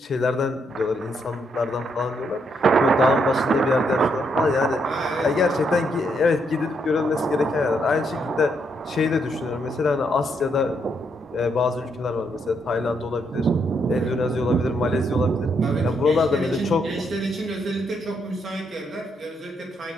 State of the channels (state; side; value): normal; both; correlation 0.76